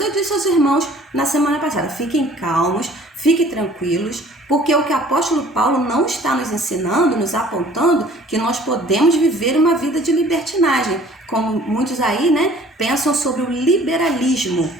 disse aos irmãos na semana passada, fiquem calmos, fiquem tranquilos, porque o que o apóstolo Paulo não está nos ensinando, nos apontando, que nós podemos viver uma vida de libertinagem. Como muitos aí, né, pensam sobre o liberalismo,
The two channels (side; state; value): both; normal; correlation 0.52